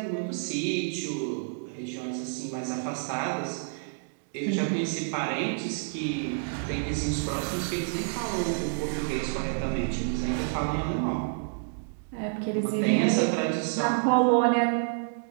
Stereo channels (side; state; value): left; silent; digital silence